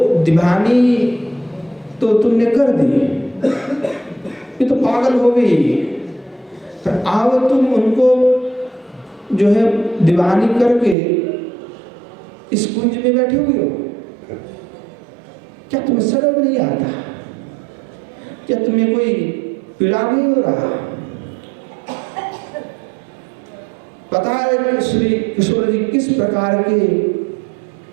दीवानी तो तुमने कर दी, ये तो पागल हो गई, पर अब तुम उनको जो है दीवानी करके इस कुंज में बैठे हुए हो। क्या तुम्हें शर्म नहीं आता? क्या तुम्हें कोई पीड़ा नहीं हो रहा? पता है श्री किशोर जी किस प्रकार के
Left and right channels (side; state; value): left; drops out; at 11.0 s